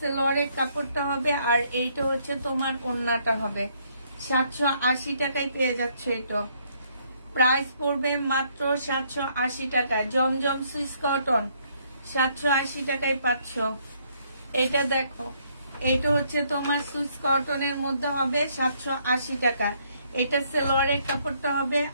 কাপড়টা হবে, আর এইটা হচ্ছে তোমার ওড়নাটা হবে। 780 টাকায় পেয়ে যাচ্ছে। এটা প্রাইস পড়বে মাত্র 780 টাকা। জমজম সুইস কটন 780 টাকায় পাচ্ছ। এটা দেখো, এটা হচ্ছে তোমার সুইস কটনের মধ্যে হবে 780 টাকা। এটা সালোয়ারের কাপড়টা হবে,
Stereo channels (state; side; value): inverted; both; correlation -0.69